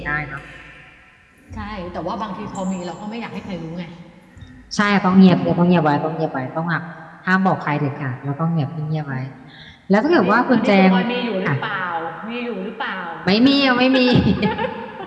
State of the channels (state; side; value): identical; both; correlation 1.00